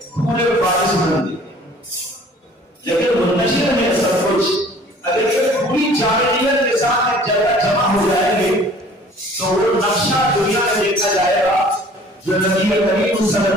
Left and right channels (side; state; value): both; normal; correlation 0.51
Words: پورے وارث بنتے ہیں، لیکن منتشر ہے سب کچھ۔ اگر یہ پوری جامعیت کے ساتھ ایک جگہ جمع ہو جائیں گے تو وہ نقشہ دنیا میں دیکھا جائے گا جو نبی کریم صلی